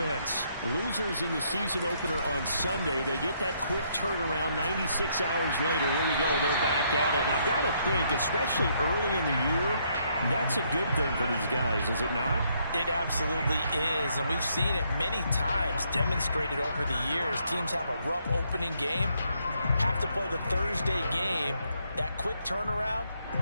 Losers in the season opener on Sunday. They get that quick turnaround 96 hours later. Here we go. They're back at it. And I've got to think, especially early in the year, that's a good thing for these guys, is it not? It absolutely is, and we've seen it many times demonstrated over the years. Teams have a rough opening game, have to play the Thursday game. That quick turnaround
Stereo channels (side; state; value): both; inverted; correlation -0.72